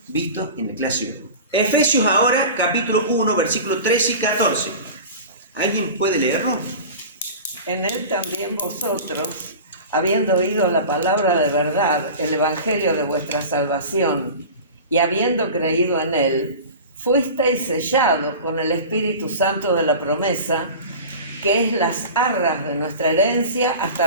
visto en la clase de hoy. Efesios ahora, capítulo 1, versículos 13 y 14. ¿Alguien puede leerlo? En él también vosotros, habiendo oído la palabra de verdad, el evangelio de vuestra salvación, y habiendo creído en él, fuisteis sellados con el Espíritu Santo de la promesa, que es las arras de nuestra herencia hasta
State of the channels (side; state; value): both; inverted; correlation -0.34